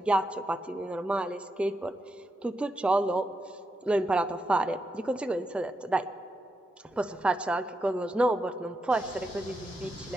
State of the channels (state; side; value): normal; both; correlation 0.84